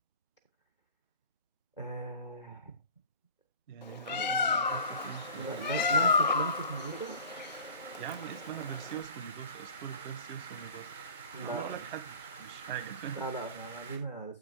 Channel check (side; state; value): both; inverted; correlation -0.41